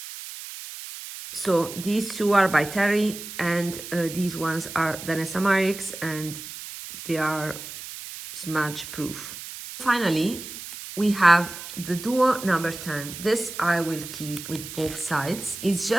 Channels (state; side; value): noise; right; hiss, 11 dB below the sound